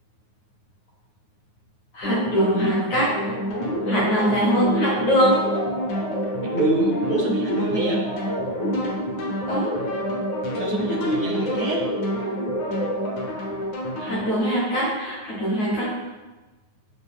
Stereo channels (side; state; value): right; late; 9.4 ms